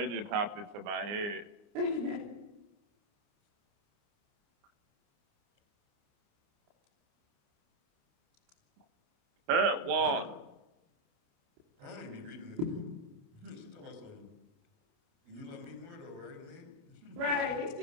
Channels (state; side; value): late; left; 29 ms